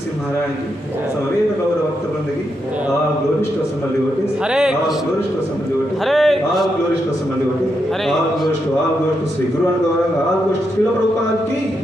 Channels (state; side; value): normal; both; correlation 0.83